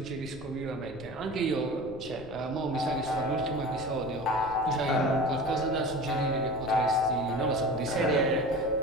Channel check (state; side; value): noise; left; rumble, 17 dB below the sound